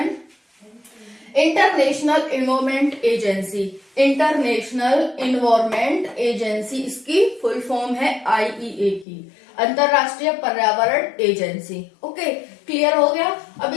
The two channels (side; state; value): right; drops out; at 9.1 s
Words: International environment agency, international environment agency इसकी फुल फॉर्म है आईईए की, अंतरराष्ट्रीय पर्यावरण एजेंसी। ओके, क्लियर हो गया। अब